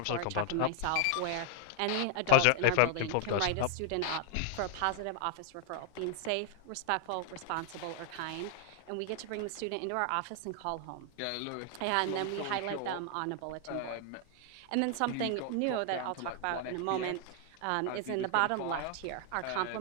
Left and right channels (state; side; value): different; both; correlation 0.00